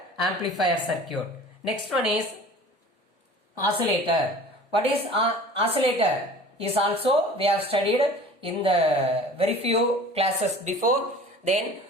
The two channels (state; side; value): normal; both; correlation 0.43